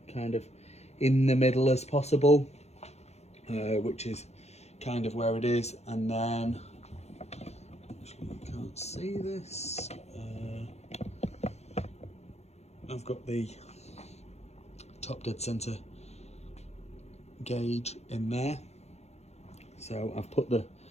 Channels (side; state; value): right; late; 0.31 ms